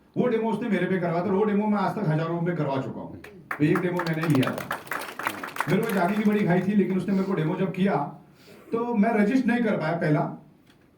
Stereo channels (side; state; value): both; identical; correlation 1.00